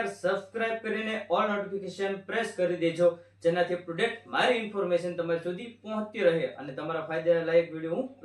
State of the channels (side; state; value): both; identical; correlation 1.00